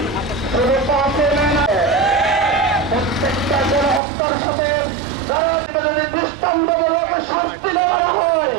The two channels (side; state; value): left; drops out; at 4.0 s